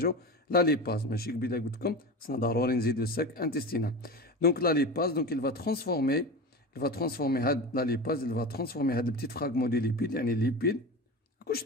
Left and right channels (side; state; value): both; normal; correlation 0.27